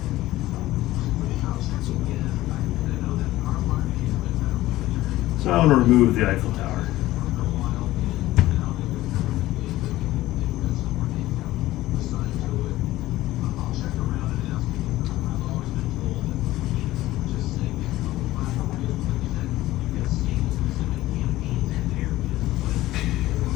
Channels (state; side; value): quieter; right; 16.3 dB